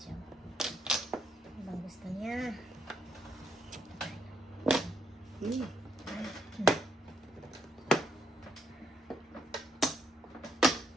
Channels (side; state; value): both; normal; correlation 0.73